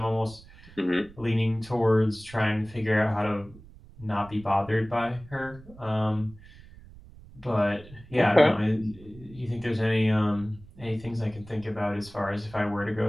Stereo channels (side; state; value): right; noise; rumble, 21 dB below the sound